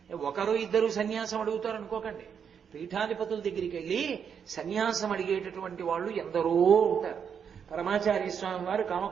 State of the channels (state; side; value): quieter; left; 7.4 dB